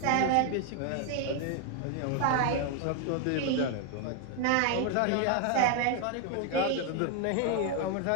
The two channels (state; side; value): different; both; correlation 0.01